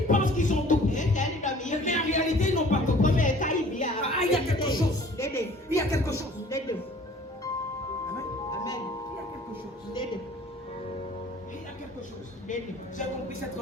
pensent qu'ils ont tout pris. Mais en réalité, ils n'ont pas tout pris. Il y a quelque chose. Il y a quelque chose. Amen. Il y a quelque chose. J'ai compris cette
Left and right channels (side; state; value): both; normal; correlation 0.50